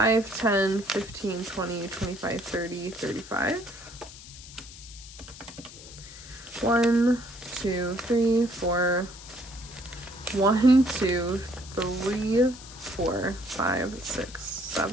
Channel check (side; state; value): left; noise; hiss, 16 dB below the sound